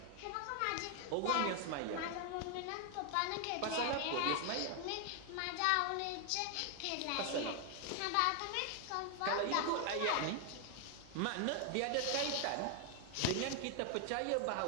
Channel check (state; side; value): different; both; correlation 0.00